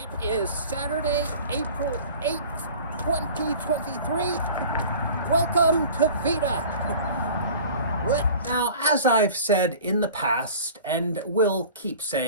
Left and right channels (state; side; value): inverted; both; correlation -0.42